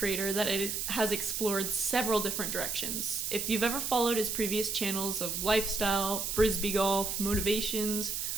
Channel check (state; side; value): noise; right; hiss, 2 dB below the sound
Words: that has explored several different directions. If you've ever followed his previous channels of lifestyle, frisbee golf, motivations,